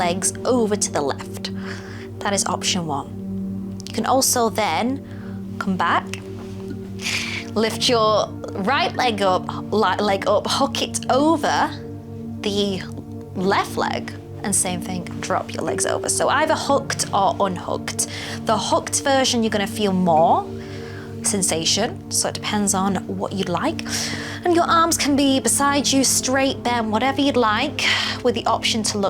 over to the left. That is option one. You can also then come back, lift your right leg up, hook it over the left leg, and same thing, drop your legs over. So either hooked or unhooked. The hooked version, you're gonna feel more sensation, so it depends on what you'd like. And your arms can be beside you, straight, bent, whatever you'd like, with the option to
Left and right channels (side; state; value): both; identical; correlation 1.00